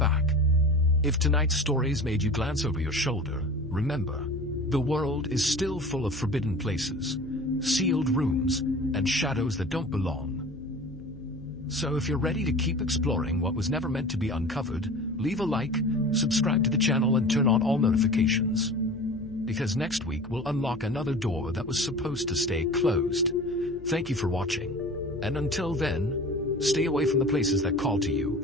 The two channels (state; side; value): noise; left; hum, 19 dB below the sound